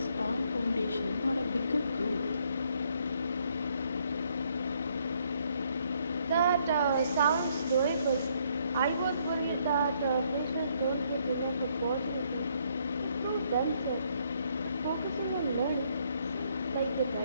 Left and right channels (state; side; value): inverted; both; correlation -0.69